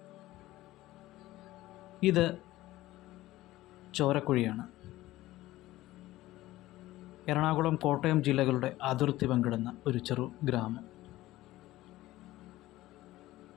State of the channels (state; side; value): quieter; right; 16.7 dB